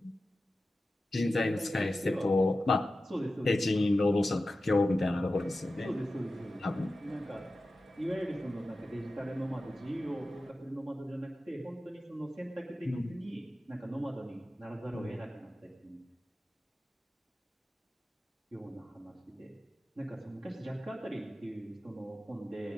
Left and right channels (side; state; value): both; normal; correlation 0.94